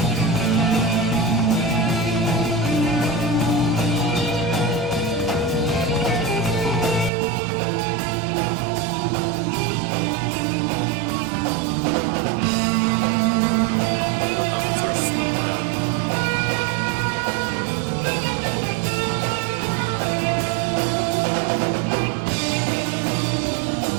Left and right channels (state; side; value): drops out; left; at 7.1 s